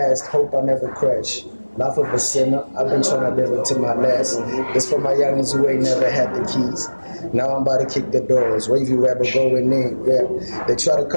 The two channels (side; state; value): both; inverted; correlation -1.00